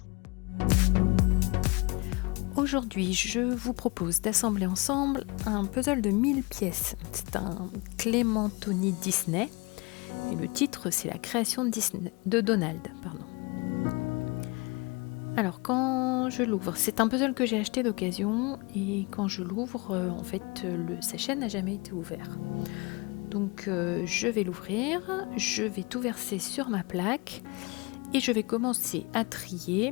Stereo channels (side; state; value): right; quieter; 27.4 dB